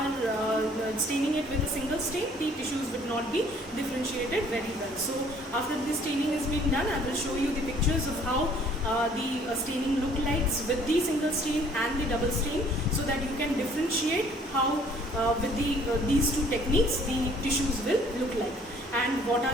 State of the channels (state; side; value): normal; both; correlation 0.58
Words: staining it with a single stain, the tissues would not be differentiated very well. So after the staining has been done, I will show you the pictures of how the staining look like with the single stain and the double stain, so that you can differentiate how with these two techniques the tissues will look like, and what are